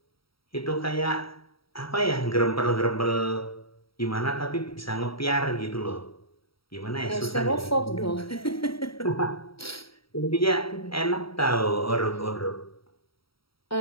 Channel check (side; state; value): right; late; 0.75 ms